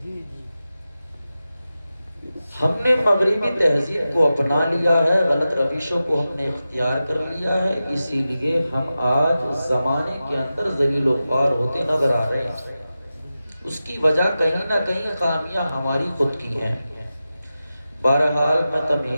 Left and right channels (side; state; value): both; inverted; correlation -0.93